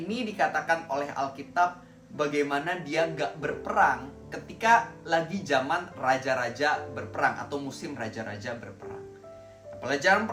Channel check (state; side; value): identical; both; correlation 1.00